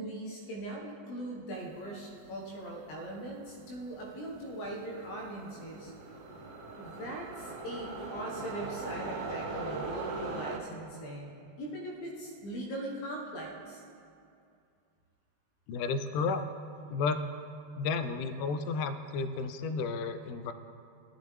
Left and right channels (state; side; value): late; right; 20 ms